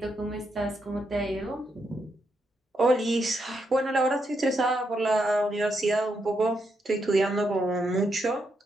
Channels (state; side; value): normal; both; correlation 0.80